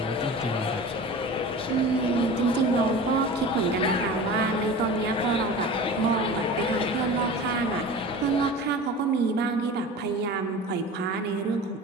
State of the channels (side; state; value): both; normal; correlation 0.36